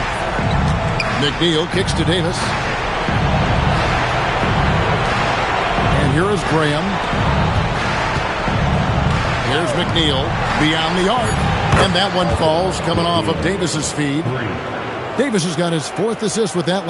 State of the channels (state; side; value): identical; both; correlation 1.00